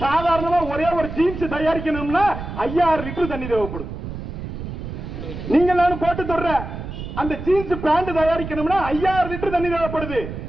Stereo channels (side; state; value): right; noise; rumble, 8 dB below the sound